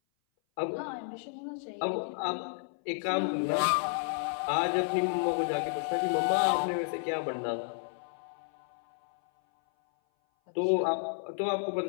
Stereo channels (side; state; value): right; silent; 57 dB below the other